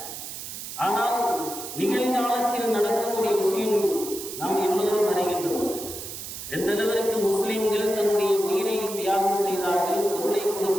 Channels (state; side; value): noise; right; hiss, 9 dB below the sound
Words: ஆனால் நிகழ்காலத்தில் நடக்கக்கூடிய விஷயம் நாம் எல்லோரும் அறிகின்றோம். எந்த அளவிற்கு முஸ்லிம்கள் தன்னுடைய உயிரை தியாகம் செய்தார்கள், பொருளை